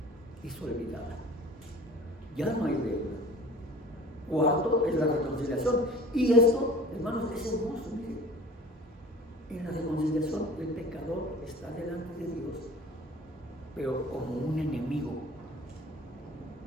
es olvidada. Ya no hay deuda. Cuarto es la reconciliación. Y esto, hermanos, es hermoso. Miren, en la reconciliación el pecador está delante de Dios, pero como un enemigo.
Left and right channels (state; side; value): normal; both; correlation 0.44